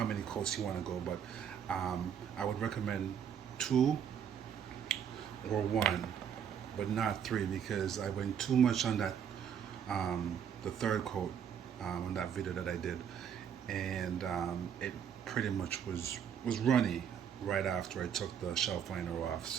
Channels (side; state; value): left; quieter; 8.2 dB